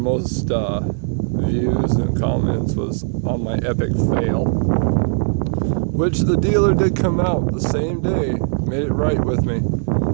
views and comments was on my epic fail, which the dealer did come out the same day, made it right with me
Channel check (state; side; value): silent; left; digital silence